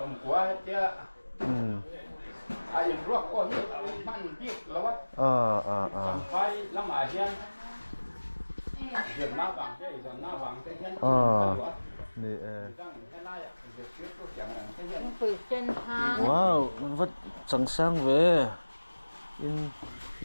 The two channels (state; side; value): inverted; both; correlation -1.00